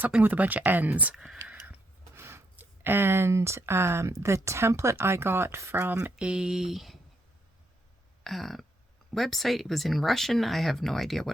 with a bunch of N's. And the template I got from a website. It was in Russian. I have no idea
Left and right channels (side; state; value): both; normal; correlation 0.76